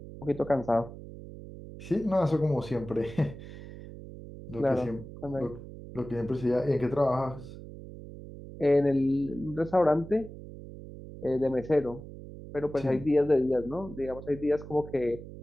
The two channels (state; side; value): noise; right; hum, 14 dB below the sound